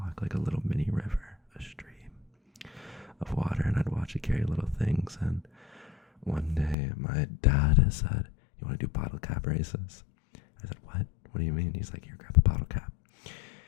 like a little mini river, a stream of water, and I'd watch it carry little things. And one day my dad said, "You want to do bottle cap races?" I said, "What? What do you mean?" He's like, "Here, grab a bottle cap."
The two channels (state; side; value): drops out; right; at 6.8 s